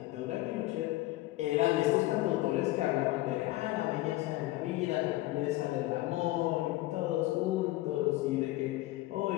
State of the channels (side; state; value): right; quieter; 17.8 dB